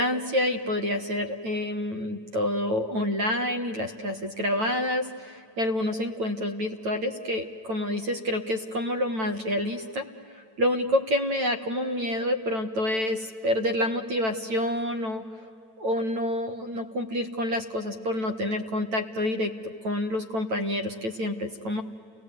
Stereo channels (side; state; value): left; late; 9.0 ms